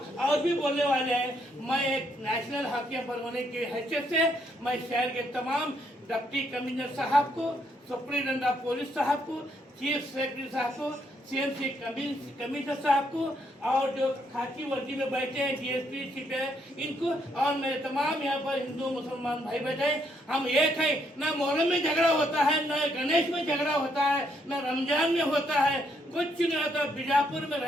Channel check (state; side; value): normal; both; correlation 0.73